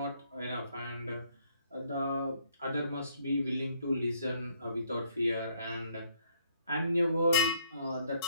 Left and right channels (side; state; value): both; inverted; correlation -0.67